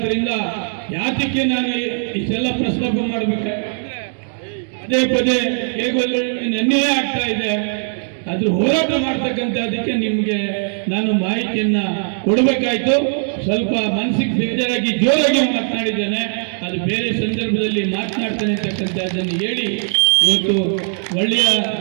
ಯಾತಕ್ಕೆ ನಾನು ಇಷ್ಟೆಲ್ಲ ಪ್ರಸ್ತಾಪ ಮಾಡ್ಬೇಕಾದ್ರೆ ಪದೇ ಪದೇ ಹೇಗೋಲ್ಲ ನನ್ನೇ ಆಗ್ತಾ ಇದೆ. ಅದ್ರ ಹೋರಾಟ ಮಾಡ್ತಕ್ಕಂಥದಕ್ಕೆ ನಿಮ್ಗೆ ನಾನು ಮಾಹಿತಿಯನ್ನ ಕೊಡಬೇಕಾಯ್ತು. ಸ್ವಲ್ಪ ಮನಸ್ಸಿಗೆ ಬೇಜಾರಾಗಿ ಜೋರಾಗಿ ಮಾತನಾಡಿದ್ದೇನೆ, ಅದು ಬೇರೆ ಸಂದರ್ಭದಲ್ಲಿ ಮಾತನಾಡ್ತಾನೆ ಅಂತಕ್ಕಂಥದ್ದನ್ನು ಹೇಳಿ ಇವತ್ತು ಒಳ್ಳೆಯ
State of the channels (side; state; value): left; silent; digital silence